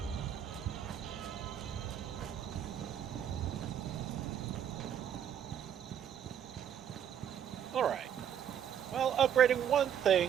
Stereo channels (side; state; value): left; quieter; 9.2 dB